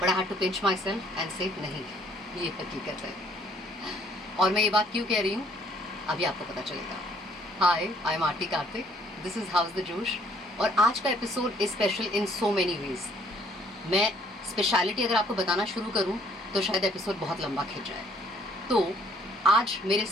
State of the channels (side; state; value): both; normal; correlation 0.63